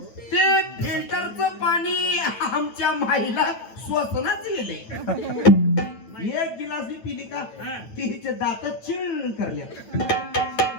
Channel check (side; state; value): right; late; 9.0 ms